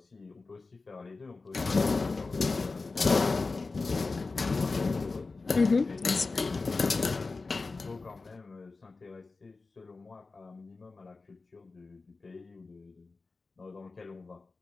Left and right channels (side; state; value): right; quieter; 3.9 dB